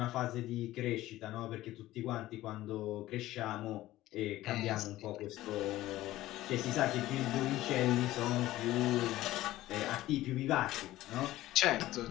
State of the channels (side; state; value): right; quieter; 15.9 dB